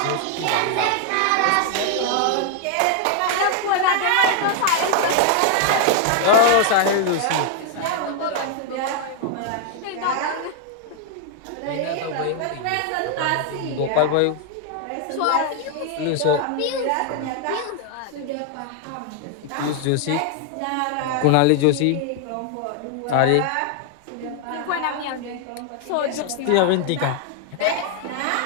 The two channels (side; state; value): both; different; correlation 0.00